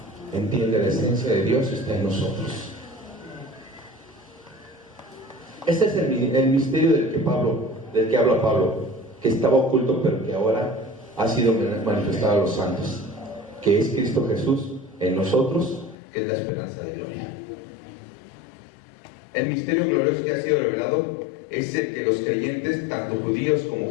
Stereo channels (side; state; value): right; drops out; at 16.0 s